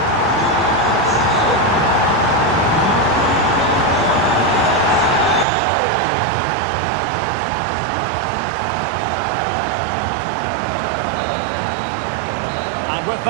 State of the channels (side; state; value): left; drops out; at 5.5 s